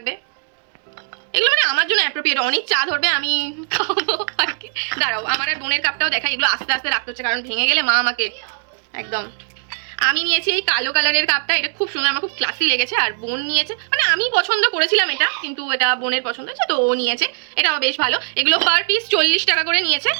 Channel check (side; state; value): left; silent; digital silence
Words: এগুলো মানে আমার জন্য অ্যাপ্রোপ্রিয়েট, অনেক চা ধরবে, আমি খাবো আর কি। দাঁড়াও, আমার আর বোনের কাপটাও দেখাই। এগুলো আস্তে আস্তে রাখতে হচ্ছে, কারণ ভেঙে গেলে মা আমাকে একদম। আমি নিয়েছি এই কালো কালারের কাপটা, এটা খুব সুন্দর, আমার খুব ক্লাসি লেগেছে। আর বোন নিয়েছে, মানে আমি পছন্দ করেছিলাম এটা, কিন্তু এটা বোনের পছন্দ হয়েছে, তো ও নিয়েছে, এটাও বেশ ভালো। এগুলো পার পিস 40 টাকা করে নিয়েছে।